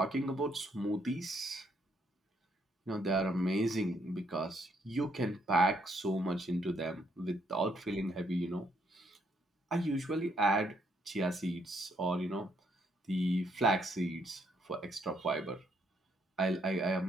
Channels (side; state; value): both; normal; correlation 0.72